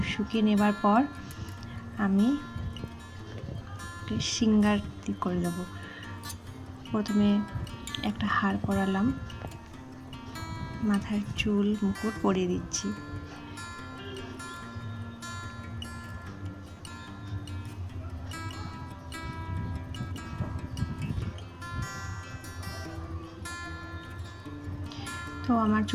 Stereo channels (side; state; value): both; identical; correlation 1.00